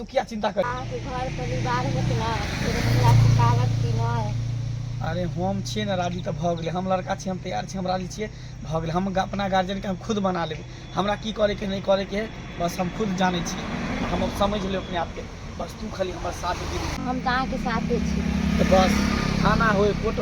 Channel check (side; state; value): both; identical; correlation 1.00